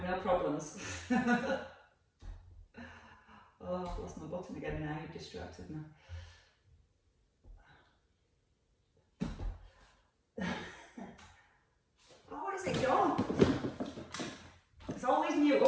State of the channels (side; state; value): both; identical; correlation 1.00